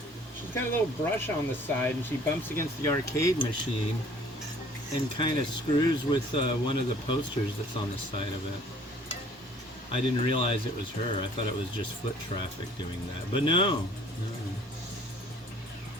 She's got a little brush on the side, and she bumps against the arcade machine and kind of screws with one of the posters that's on the side of it. I didn't realize it was her. I thought it was just foot traffic doing that. But no.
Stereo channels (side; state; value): both; normal; correlation 0.54